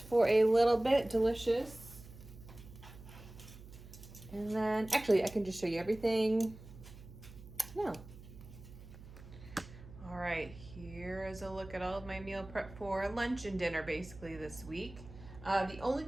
for a little bit. Delicious. And then, actually, I can just show you everything now. All right, here is a look at all of my meal prep for lunch and dinner basically this week. The only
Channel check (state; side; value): noise; right; hum, 17 dB below the sound